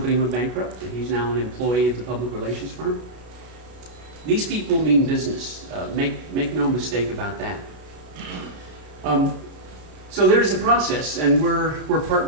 went bankrupt, and he's now an employee of the public relations firm. These people mean business. Make no mistake about that. So there's a process, and we're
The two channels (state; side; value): late; left; 33 ms